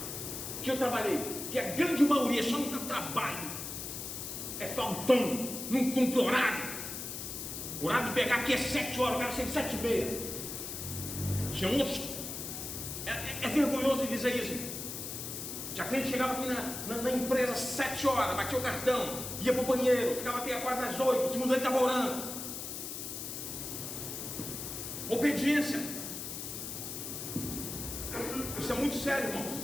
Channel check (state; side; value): noise; left; hiss, 6 dB below the sound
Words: que eu trabalhei, que a grande maioria só não dá trabalho, é faltão, não cumpre horário. O horário de pegar aqui é 7 horas, o cara chega 7h30. Tinha uns. É vergonhoso dizer isso. Já a cliente chegava aqui na empresa às 7 horas, batia o cartão, ia para o banheiro, ficava até quase às 8, o segundo ele estava orando. Obediência. Isso é muito sério, irmãos.